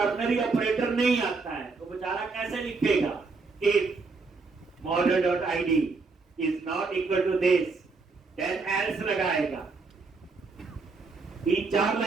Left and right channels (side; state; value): left; quieter; 4.2 dB